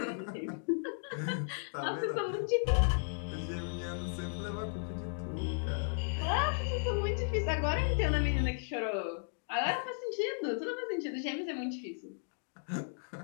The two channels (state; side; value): silent; right; digital silence